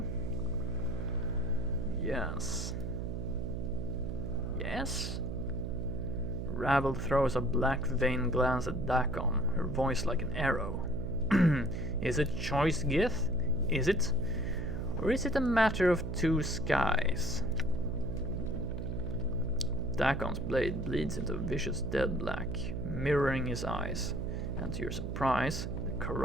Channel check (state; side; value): noise; right; hum, 4 dB below the sound